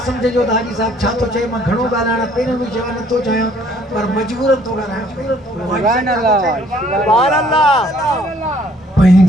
सम्झिजो त हाजी साहब छा थो चए मां घणो ॻाल्हाइण पहिरियों बि चवां नथो चाहियां पर मजबूरन थो ॻाल्हायां।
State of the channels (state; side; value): normal; both; correlation 0.61